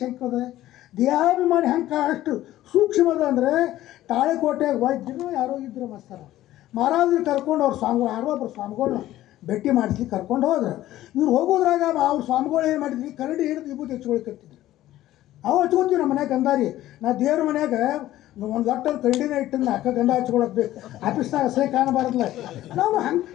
ಶಂಕದ? ದೇಹಾಭಿಮಾನಿ ಹೆಂಗೆ ಅಷ್ಟು ಸೂಕ್ಷ್ಮದ ಅಂದರೆ ತಾಳೆಕೋಟೆಗೆ ವೈದ್ಯರು ಯಾರೋ ಇದ್ರು ಮಸ್ತಾರ ಮಹಾರಾಜರು ಕರ್ಕೊಂಡು ಅವ್ರ ಸ್ವಾಮಿಗಳು ಯಾರೋ ಒಬ್ಬರು ಸ್ವಾಮಿಗಳನ್ನ ಭೇಟಿ ಮಾಡಿಸ್ಲಿಕ್ಕೆ ಕರ್ಕೊಂಡು ಹೋದ್ರೆ ಇವ್ರು ಹೋಗೋದ್ರಾಗ ಅವ್ರ ಸ್ವಾಮಿಗಳು ಏನು ಮಾಡಿದ್ವಿ, ಕರಡಿ ಹಿಡಿದು ವಿಭೂತಿ ಹಚ್ಕೊಳ್ಕತ್ತಿದ್ರು. ಅವು ಹಚ್ಕೋತೀವಿ ನಮ್ಮ ಮನ್ಯಾಗ ಗಂಧಾರಿ. ನಾ ದೇವ್ರ ಮನ್ಯಾಗ ಒಂದು ಲಟ್ಟಲ್ಲಿ ಕರಡಿನ ಇಟ್ಟಿಂದ ಅಕ್ಕ ಗಂಧ ಹಚ್ಕೊಳಕ್ ಬೇಕು. ಆಫೀಸ್ನಾಗ ಅಸಹ್ಯ ಕಾಣಬಾರ್ದಲ್ಲ. ನಾವು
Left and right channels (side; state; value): right; quieter; 14.5 dB